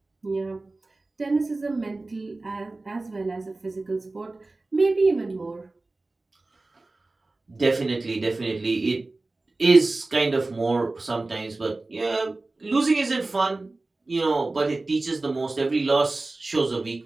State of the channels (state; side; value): quieter; left; 3.2 dB